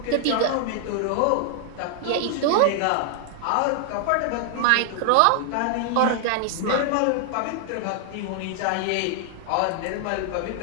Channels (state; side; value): different; both; correlation 0.00